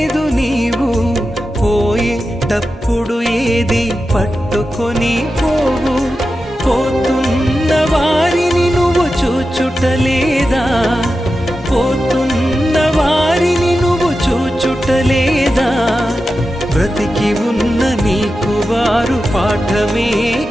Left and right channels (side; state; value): both; normal; correlation 0.91